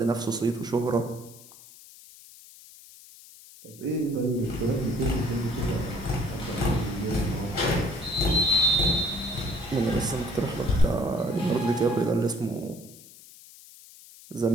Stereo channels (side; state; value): left; noise; hiss, 20 dB below the sound